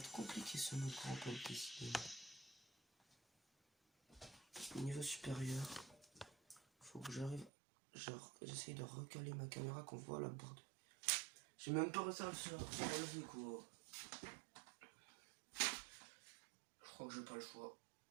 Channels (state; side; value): drops out; left; at 7.5 s